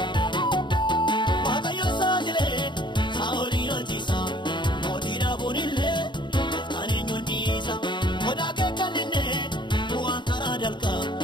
Waaqayyoon saaxilee saa'oliin hojiisa mootii dhaabuun illee gooftaan eenyuun dhiisa godaa kee kan inni bu'aan karaa dalqa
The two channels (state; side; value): late; right; 0.22 ms